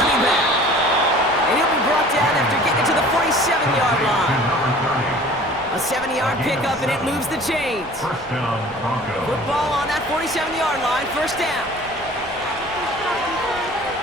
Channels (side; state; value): left; noise; rumble, 21 dB below the sound